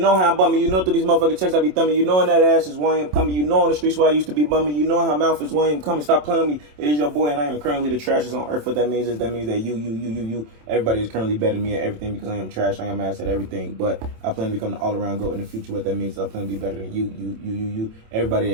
how I'm bumming, you know through these motherfucking checks I be thumbing, you know in that ass is why I'm coming, you know on the streets where I used to be bumming, you know how mouth is why I'm coming. Stop playing with me. It is your boy and I am currently the trashest on earth. What that means is that you, everybody is currently better than me at everything because I am trash, I am ass at everything. But I plan to become the all-around GOAT in the future. What that means is I plan to be better than you,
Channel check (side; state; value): left; late; 27 ms